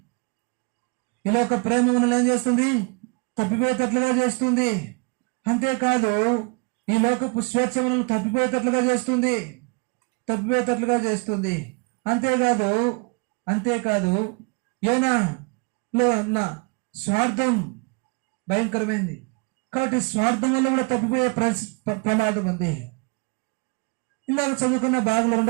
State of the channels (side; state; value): left; quieter; 31.7 dB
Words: ఈ లోక ప్రేమ మనల్ని ఏం చేస్తుంది? తప్పిపోయేటట్లుగా చేస్తుంది. అంతేకాదు ఈ లోకపు స్వేచ్ఛ మనల్ని తప్పిపోయేటట్లుగా చేస్తుంది. అంతేకాదు యోనాలో ఉన్న స్వార్థం భయంకరమైంది. కాబట్టి స్వార్థం వల్ల కూడా తప్పిపోయే ప్రమాదం ఉంది. ఇందాక చదువుకున్న భాగంలో